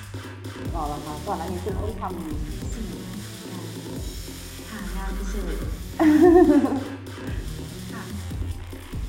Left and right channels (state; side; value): identical; both; correlation 1.00